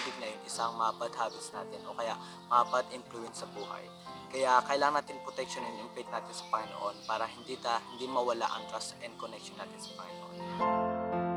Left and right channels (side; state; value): both; identical; correlation 1.00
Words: na yun, isang mga bad habits natin o kaya mga bad influence sa buhay. Kaya kailangan natin protectionin yung faith natin sa Panginoon para hindi mawala ang trust and connection natin sa Panginoon.